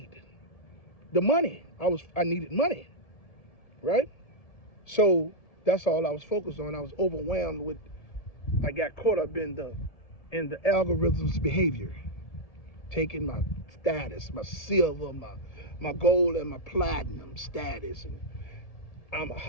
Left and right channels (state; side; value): late; right; 1.7 ms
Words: the money. I needed money, right? So that's all I was focused on. I was overwhelmed with, I got caught up in the algorithm's behavior, taking my status, my silver, my gold and my platinum status, and I'm